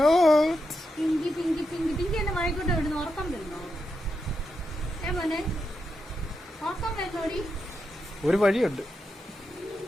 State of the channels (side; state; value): both; normal; correlation 0.86